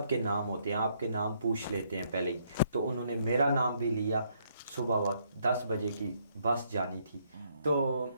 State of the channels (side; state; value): both; inverted; correlation -0.71